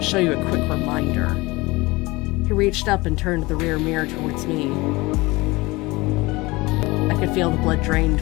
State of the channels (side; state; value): right; quieter; 22.2 dB